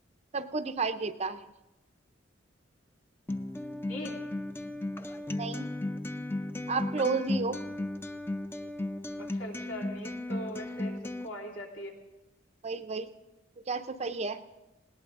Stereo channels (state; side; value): normal; both; correlation 0.46